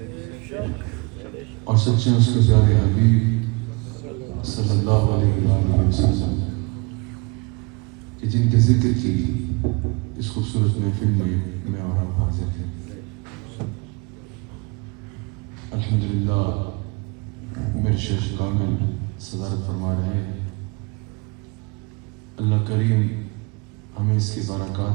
اور سچے اس کے پیارے حبیب صلی اللہ علیہ وآلہ وسلم کہ جن کے ذکر کی اس خوبصورت محفل میں اور آپ حاضر ہیں. الحمدللہ میرے شیخ کامل صدارت فرما رہے ہیں. اللہ کریم ہمیں اس کی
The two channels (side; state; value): left; quieter; 28.6 dB